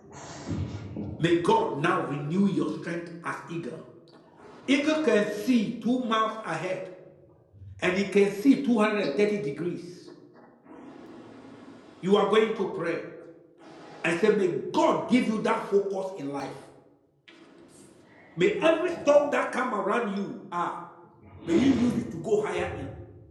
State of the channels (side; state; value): both; identical; correlation 1.00